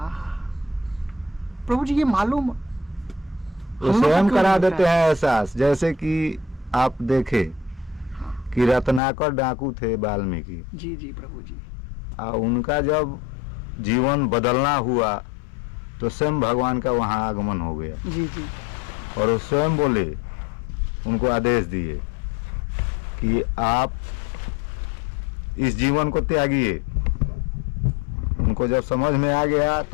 प्रभु जी ये मालूम वो स्वयं करा देते हैं एहसास। जैसे कि आप देखे कि रत्नाकर डाकू थे वाल्मीकि। जी जी प्रभु जी। उनका जब जीवन बदलना हुआ तो स्वयं भगवान का वहाँ आगमन हो गया। जी जी। और वो स्वयं बोले, उनको आदेश दिए कि आप इस जीवन को त्यागिए। उनको जब समझ में आ गया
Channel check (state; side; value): drops out; right; at 9.0 s